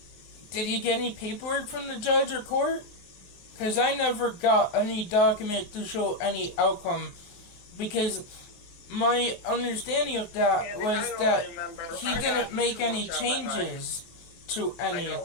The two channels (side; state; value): right; late; 24 ms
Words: Did you get any paperwork from the judge or court? Because I never got any document to show any outcome. Because my understanding of that was that he didn't make any changes to any